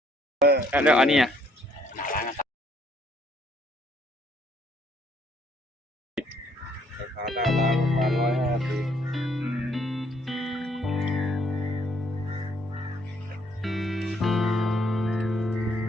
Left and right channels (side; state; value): both; normal; correlation 0.67